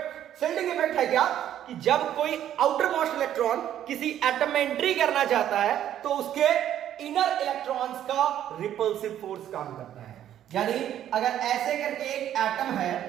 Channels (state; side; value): quieter; left; 11.1 dB